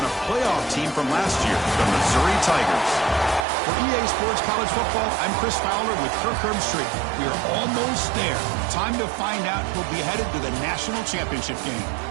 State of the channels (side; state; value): left; drops out; at 3.5 s